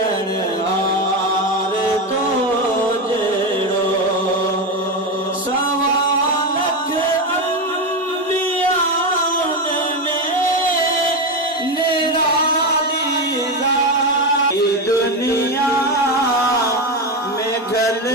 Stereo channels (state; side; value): normal; both; correlation 0.14